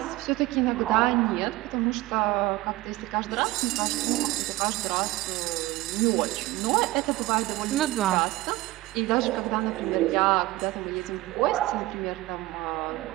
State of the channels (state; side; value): quieter; left; 18.7 dB